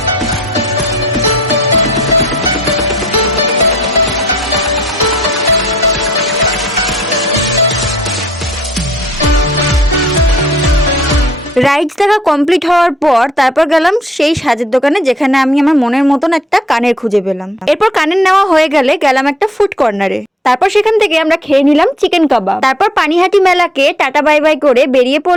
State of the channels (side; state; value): both; normal; correlation 0.62